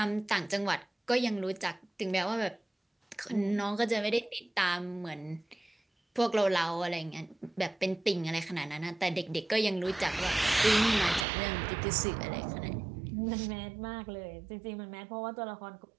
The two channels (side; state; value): left; drops out; at 11.2 s